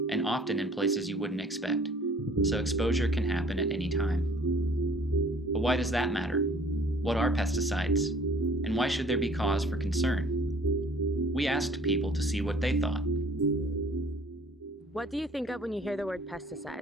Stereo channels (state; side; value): normal; both; correlation 0.53